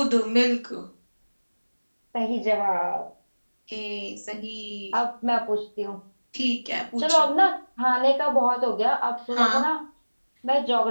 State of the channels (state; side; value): inverted; both; correlation -1.00